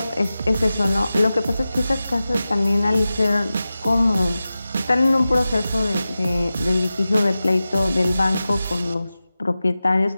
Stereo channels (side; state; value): both; inverted; correlation -0.94